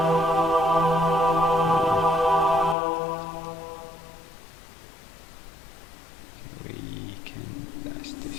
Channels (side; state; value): right; drops out; at 2.8 s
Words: We can blast